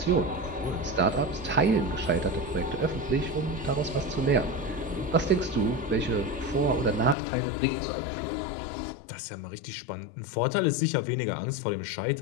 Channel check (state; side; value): drops out; right; at 7.2 s